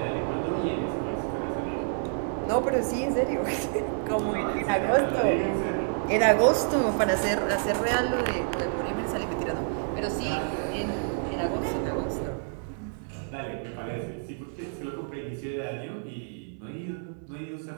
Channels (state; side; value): silent; left; 59 dB below the other